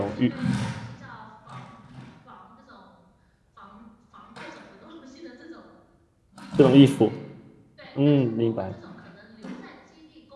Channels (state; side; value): identical; both; correlation 1.00